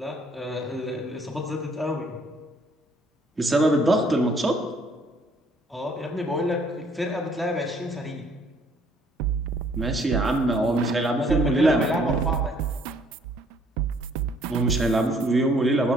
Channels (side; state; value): both; normal; correlation 0.62